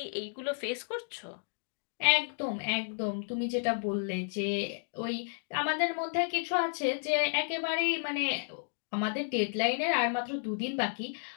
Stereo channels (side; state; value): right; silent; digital silence